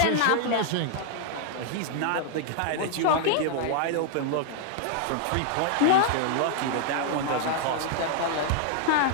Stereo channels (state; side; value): different; both; correlation 0.00